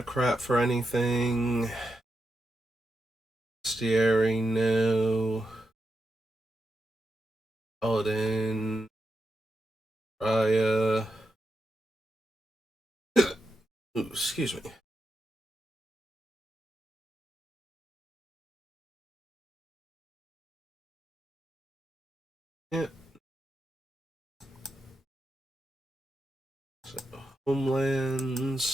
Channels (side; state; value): both; normal; correlation 0.86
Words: for anything. Stieri, no. Paladin. Raya. Ooh, excuse me. Yeah. So,